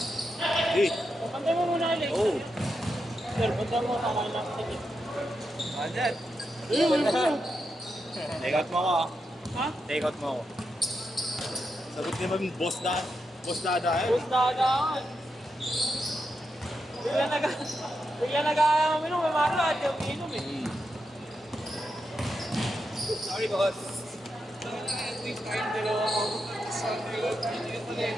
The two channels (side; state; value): both; normal; correlation 0.86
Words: Di. Pantay mo muna, Alex. Oo. Sir, pantay mo, tama lang. Sige. Andyan. Ayun. Take out mo ako, ah. Ha? Take out mo ako. Sagot naman, boss dada. Boss dada, eh. Bus dagaan. Bigla nag-aminom, may maro at yung inom eh. Sorry, boss.